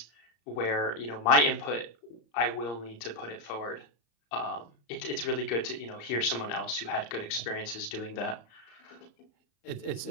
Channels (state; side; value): late; right; 34 ms